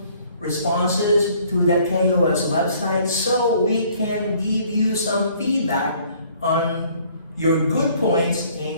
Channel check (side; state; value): both; inverted; correlation -0.59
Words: responses to the KOS website so we can give you some feedback on your good points and